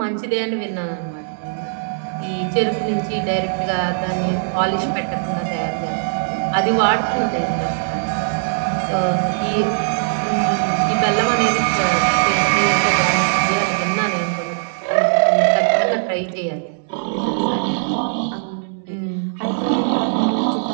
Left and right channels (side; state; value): left; silent; digital silence